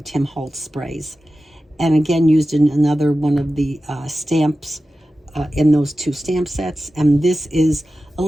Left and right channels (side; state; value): both; normal; correlation 0.94